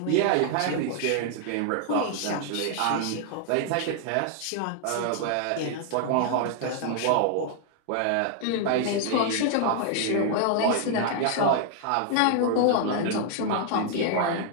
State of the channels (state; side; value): different; both; correlation 0.00